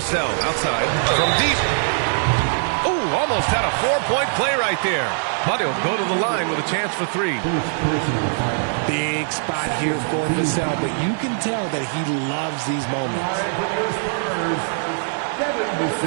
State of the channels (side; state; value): left; silent; 64 dB below the other